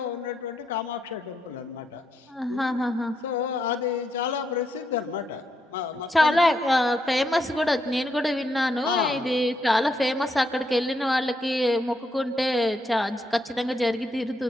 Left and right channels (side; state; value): both; normal; correlation 0.78